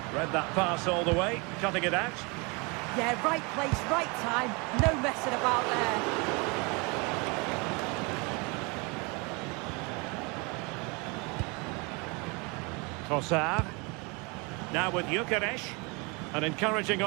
Read that pass all the way, cutting it out. Yeah, right place, right time. No messing about there. Trossard. Now with Gyökeres. An encouraging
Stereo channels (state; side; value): quieter; left; 29.4 dB